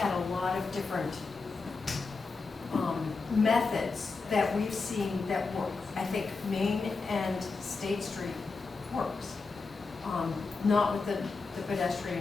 a lot of different methods that we've seen that work. I think Main and State Street works. Not with the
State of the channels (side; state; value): right; quieter; 4.3 dB